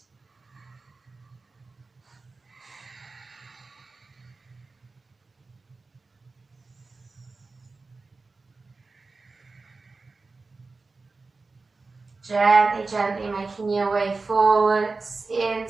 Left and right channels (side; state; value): left; quieter; 3.9 dB